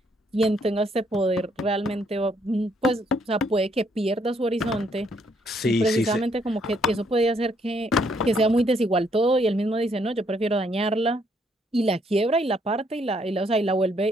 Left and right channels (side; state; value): both; normal; correlation 0.70